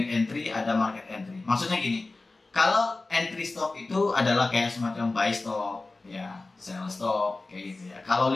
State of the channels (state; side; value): quieter; right; 3.4 dB